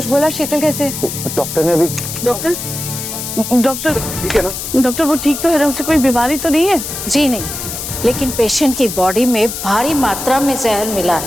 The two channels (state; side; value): noise; left; hiss, 6 dB below the sound